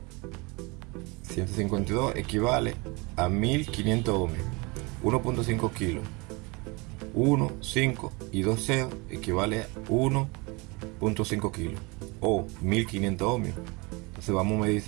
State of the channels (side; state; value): left; quieter; 27.0 dB